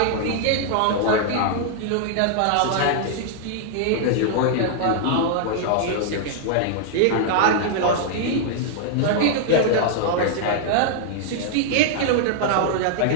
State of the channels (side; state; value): both; different; correlation -0.01